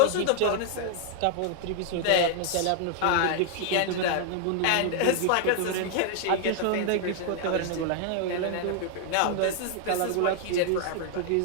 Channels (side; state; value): both; different; correlation 0.00